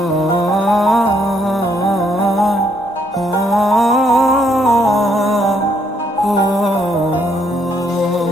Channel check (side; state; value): both; normal; correlation 0.71